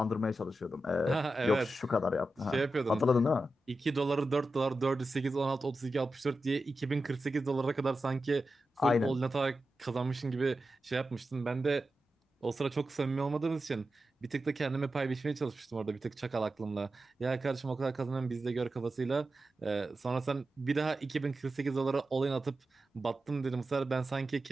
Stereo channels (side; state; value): both; normal; correlation 0.91